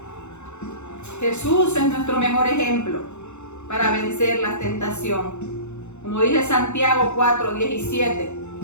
Jesús es nuestro mejor ejemplo para vencer la tentación. Como dice Santiago 4:17,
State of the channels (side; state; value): right; late; 0.82 ms